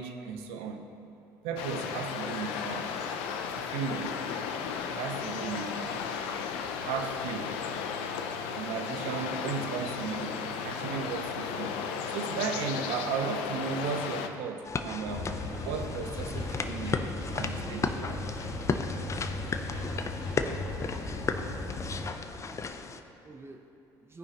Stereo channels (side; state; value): both; normal; correlation 0.34